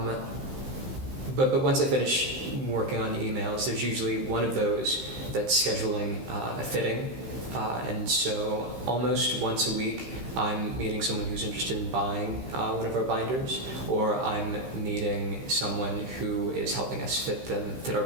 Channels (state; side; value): late; left; 15 ms